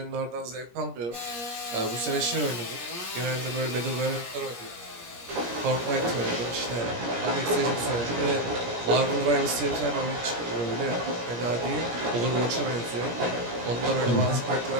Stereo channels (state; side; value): late; left; 17 ms